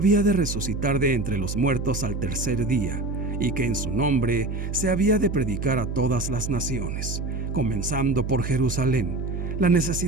de resucitar de entre los muertos al tercer día, y que en su nombre se había de predicar a todas las naciones, comenzando por Jerusalén, la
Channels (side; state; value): right; noise; hum, 4 dB below the sound